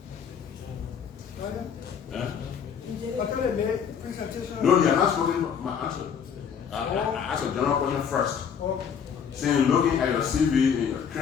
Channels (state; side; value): quieter; right; 7.3 dB